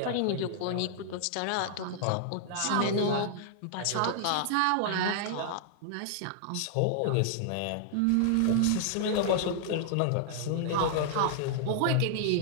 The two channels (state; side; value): different; both; correlation -0.01